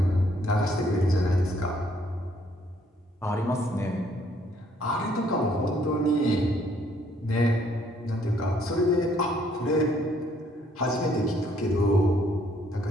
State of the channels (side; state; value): both; normal; correlation 0.66